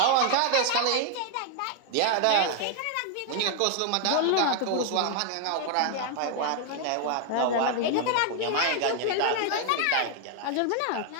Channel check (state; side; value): different; both; correlation 0.00